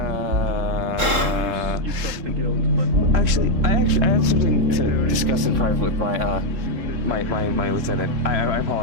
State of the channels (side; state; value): left; late; 3.7 ms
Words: You trust the guild, but... Actually, I had something to discuss in private with my lieutenant. I